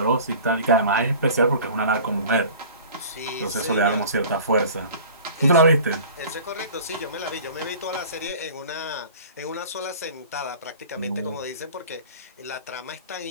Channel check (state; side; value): inverted; both; correlation -0.43